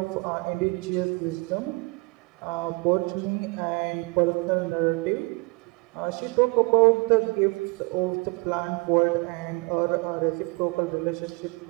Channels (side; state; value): left; quieter; 28.1 dB